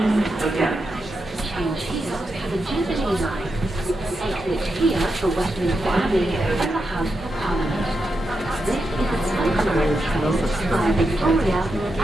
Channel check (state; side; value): normal; both; correlation 0.86